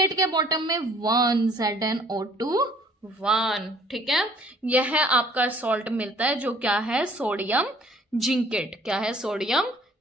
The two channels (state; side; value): normal; both; correlation 0.58